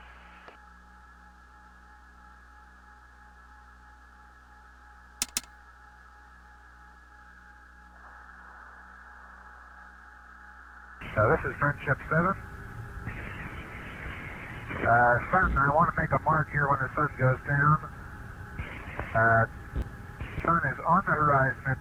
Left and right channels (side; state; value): both; identical; correlation 1.00